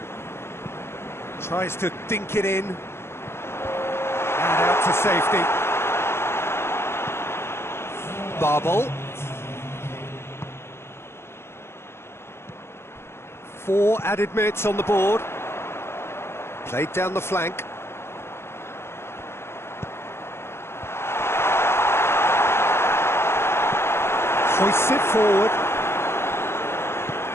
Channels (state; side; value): late; right; 0.12 ms